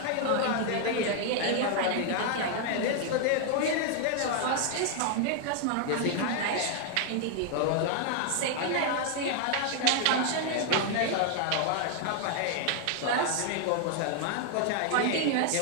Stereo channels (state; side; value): different; both; correlation 0.00